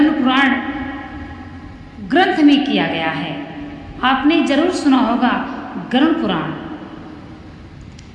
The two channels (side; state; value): both; identical; correlation 1.00